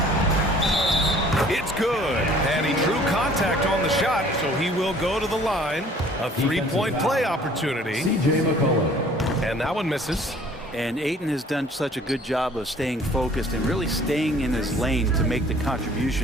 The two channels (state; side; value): normal; both; correlation 0.54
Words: It's good, and he drew contact on the shot, so he will go to the line. A three-point play opportunity. CJ McCollum. And that one misses. And Ayton has done such a good job of staying focused and really staying in his lane to make the